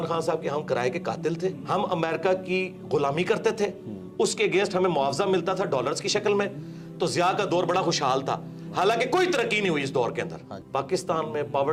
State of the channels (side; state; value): both; identical; correlation 1.00